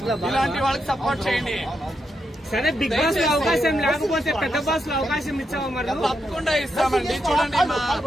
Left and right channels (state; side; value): normal; both; correlation 0.83